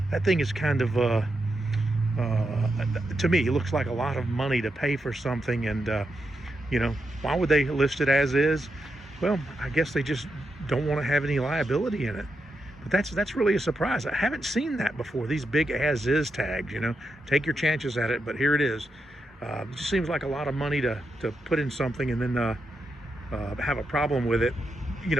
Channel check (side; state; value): both; normal; correlation 0.85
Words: thing is kind of to me, it looks like a lot of money to pay for something, and why would they list it as is? Well, I guess they just don't want to have any liability in it. But that's really a surprise. I haven't seen that before. These big as is tags, take your chances at it, but here it is. It just seems like a lot of money to put in something and then have a problem with it,